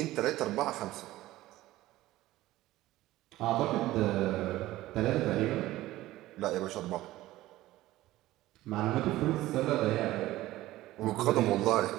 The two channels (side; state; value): left; quieter; 16.4 dB